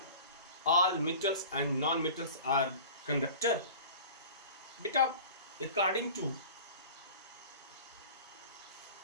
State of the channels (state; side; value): inverted; both; correlation -0.40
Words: all metals and non-metals are conductor? Beta, according to